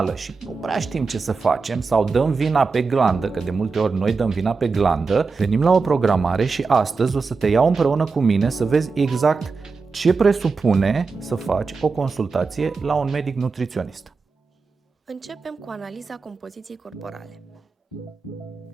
și nu prea știm ce să facem sau dăm vina pe glandă, că de multe ori noi dăm vina pe glandă, venim la o programare și astăzi o să te iau împreună cu mine să vezi exact ce presupune să faci o consultație la un medic nutriționist. Începem cu analiza compoziției corporale.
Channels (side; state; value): left; quieter; 4.6 dB